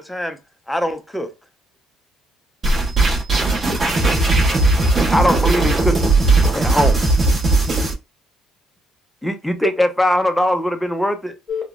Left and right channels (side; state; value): both; normal; correlation 0.76